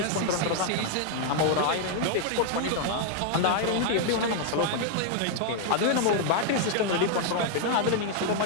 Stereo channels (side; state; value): both; different; correlation 0.00